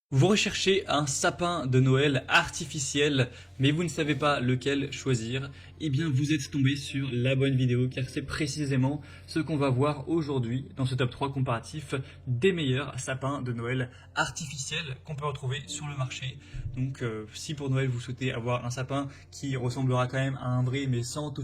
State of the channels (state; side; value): identical; both; correlation 1.00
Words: Vous recherchez un sapin de Noël artificiel, mais vous ne savez pas lequel choisir. Eh bien, vous êtes tombé sur la bonne vidéo, car c'est précisément ce qu'on va voir aujourd'hui dans ce top 3 comparatif des meilleurs sapins de Noël artificiels qu'on peut retrouver sur le marché. Donc, si pour Noël vous souhaitez avoir un sapin qui ressemblera quand même à un vrai, mais sans